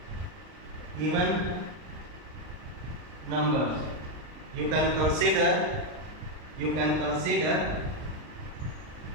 even numbers. You can consider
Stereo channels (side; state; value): left; late; 39 ms